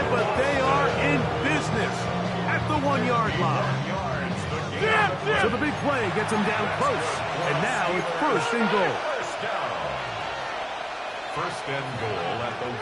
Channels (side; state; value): both; identical; correlation 1.00